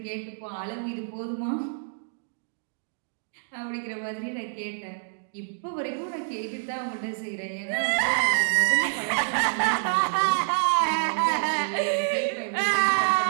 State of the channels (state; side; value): silent; left; digital silence